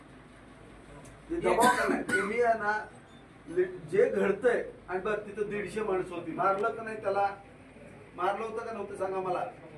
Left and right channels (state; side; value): identical; both; correlation 1.00